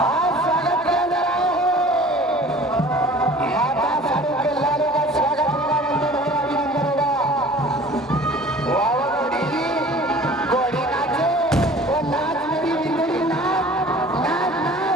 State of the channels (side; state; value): both; normal; correlation 0.46